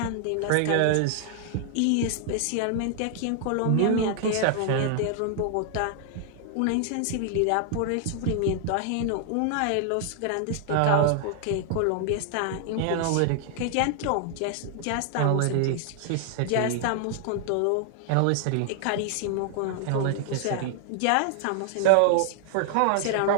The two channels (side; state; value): both; different; correlation 0.00